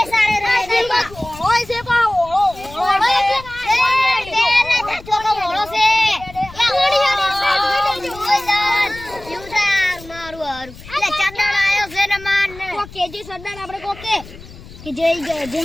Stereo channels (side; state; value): left; noise; rumble, 18 dB below the sound